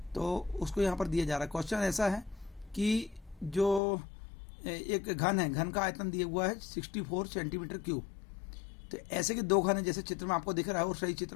तो उसको यहाँ पर दिया जा रहा है। क्वेश्चन ऐसा है कि जो एक घन है, घन का आयतन दिया हुआ है 64 सेंटीमीटर क्यूब। तो ऐसे के 2 घन है, जैसे चित्र में आपको दिख रहा है, और सही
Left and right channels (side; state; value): right; drops out; at 3.8 s